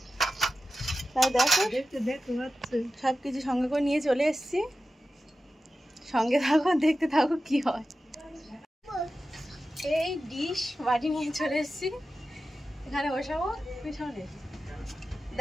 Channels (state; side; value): normal; both; correlation 0.93